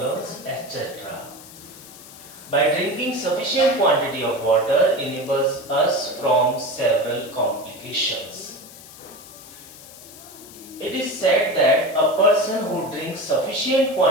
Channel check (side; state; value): left; noise; hiss, 18 dB below the sound